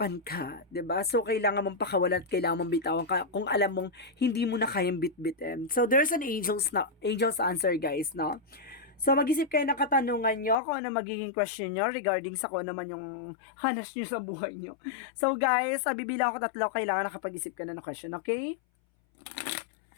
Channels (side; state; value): right; drops out; at 10.6 s